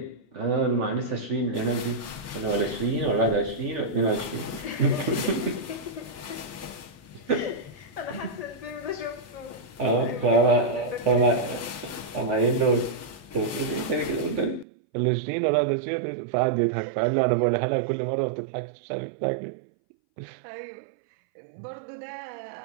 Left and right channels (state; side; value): drops out; left; at 14.7 s